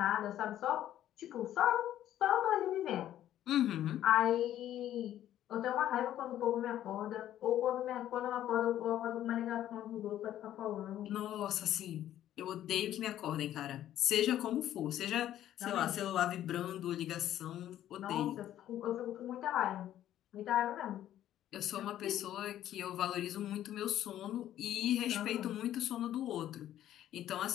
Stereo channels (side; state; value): right; quieter; 12.1 dB